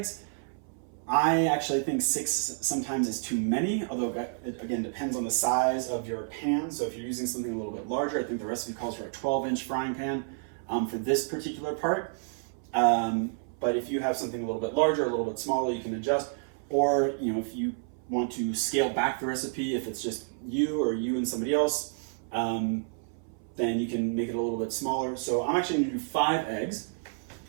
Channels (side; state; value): left; silent; 58 dB below the other